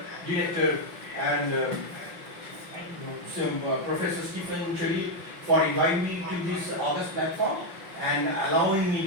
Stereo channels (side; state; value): left; late; 5.8 ms